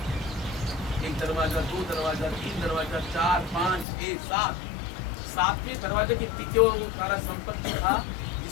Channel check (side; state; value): right; drops out; at 3.9 s